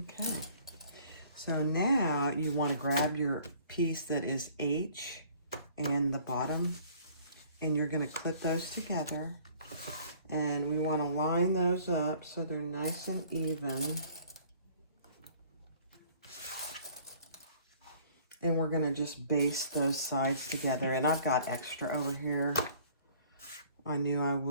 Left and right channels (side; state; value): both; inverted; correlation -0.54